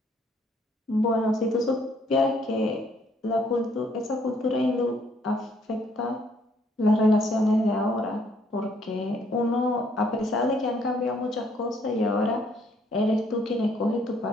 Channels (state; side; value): normal; both; correlation 0.66